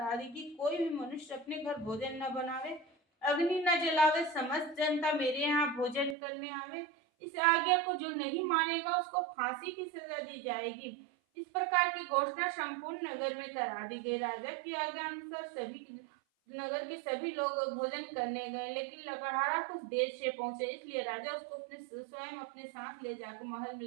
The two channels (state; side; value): drops out; left; at 6.2 s